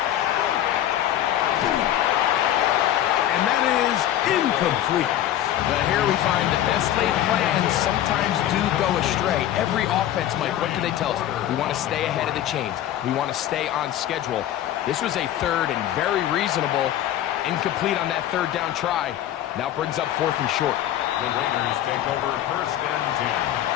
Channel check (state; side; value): quieter; right; 12.1 dB